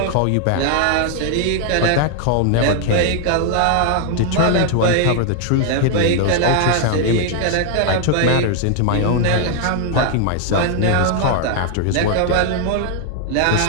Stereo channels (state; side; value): different; both; correlation 0.00